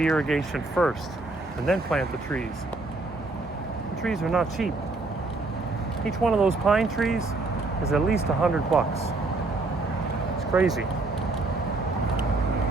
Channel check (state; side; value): quieter; left; 3.3 dB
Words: irrigation first and then plant the trees. The trees are not cheap. Each one of those pine trees is at least $100. It's crazy.